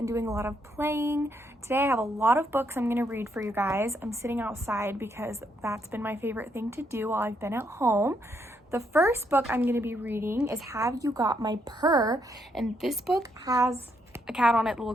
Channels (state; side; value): normal; both; correlation 0.75